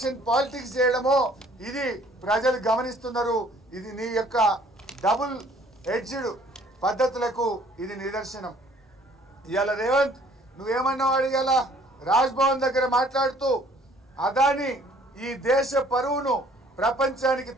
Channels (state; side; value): normal; both; correlation 0.57